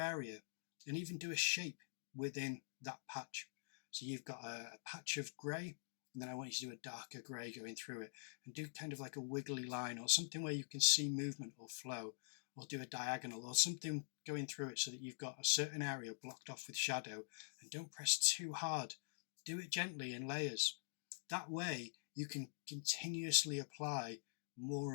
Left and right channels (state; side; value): silent; right; digital silence